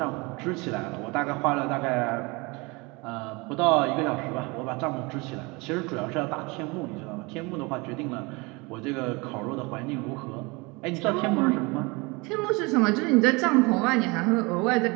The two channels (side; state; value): left; quieter; 26.3 dB